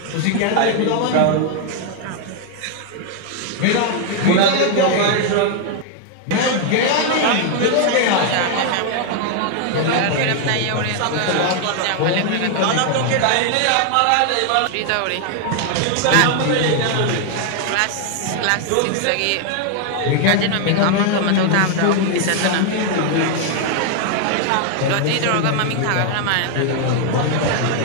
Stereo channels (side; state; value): both; different; correlation 0.00